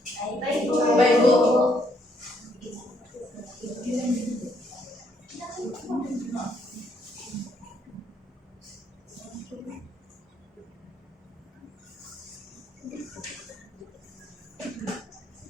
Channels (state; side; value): normal; both; correlation 0.71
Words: Baik, Bu. Baik, Bu.